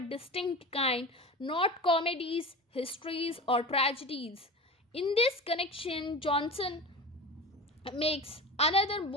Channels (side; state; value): both; normal; correlation 0.31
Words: distinct kind, not comedies, histories, or tragedies. In this connection, Johnson makes another